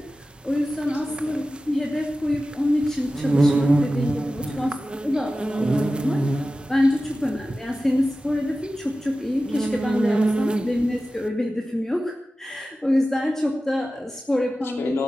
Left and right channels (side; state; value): both; normal; correlation 0.95